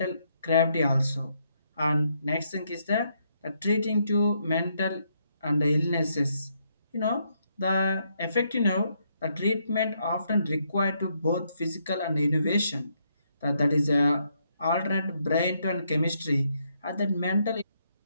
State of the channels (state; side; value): inverted; both; correlation -0.75